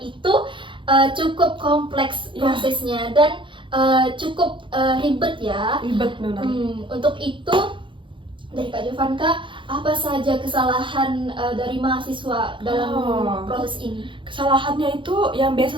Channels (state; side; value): late; left; 0.24 ms